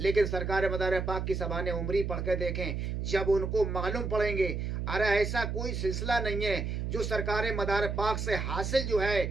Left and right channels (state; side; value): noise; right; hum, 2 dB below the sound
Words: सरकार मदार पाक की ज़बान उमरी पढ़ के देखें, जब उनको मालूम पड़ेंगे अरे ऐसा कोई सिलसिला नहीं है जो सरकार मदार पाक से हासिल जो